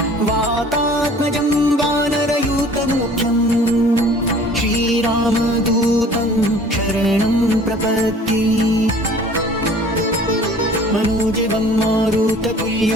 वातात्मजं वानरयूतमुख्यं श्रीरामदूतं शरणं प्रपद्ये। मनोजवं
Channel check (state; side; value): normal; both; correlation 0.49